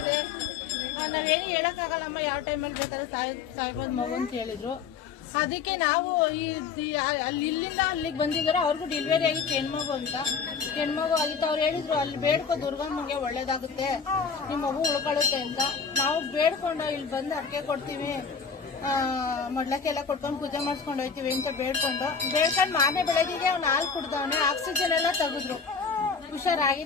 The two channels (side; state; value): right; quieter; 5.9 dB